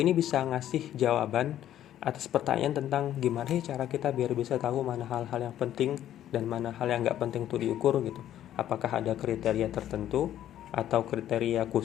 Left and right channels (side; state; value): right; quieter; 11.8 dB